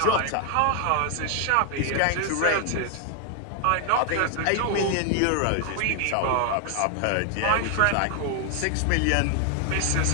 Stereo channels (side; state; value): both; different; correlation 0.00